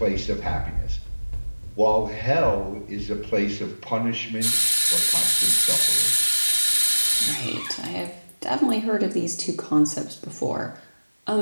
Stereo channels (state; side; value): inverted; both; correlation -1.00